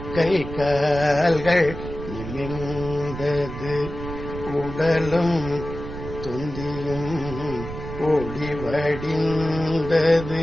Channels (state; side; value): noise; right; rumble, 9 dB below the sound